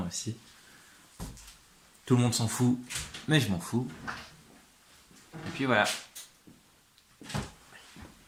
aussi. Tout le monde s'en fout, mais je m'en fous. Et puis voilà.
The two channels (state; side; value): identical; both; correlation 1.00